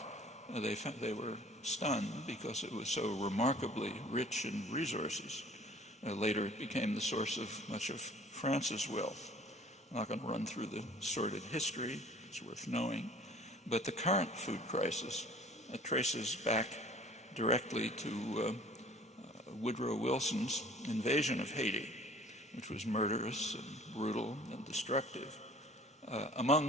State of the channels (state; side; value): normal; both; correlation 0.50